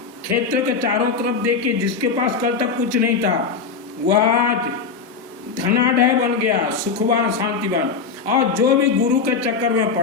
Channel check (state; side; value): quieter; right; 5.2 dB